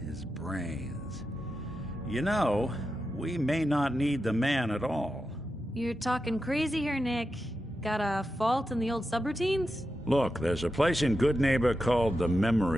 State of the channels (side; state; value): both; normal; correlation 0.89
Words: His brains. You know, we may not need the man at all. You're talking crazy here, Nick. Got a fault in the old subroutines? Look, there's a place in Goodneighbor called the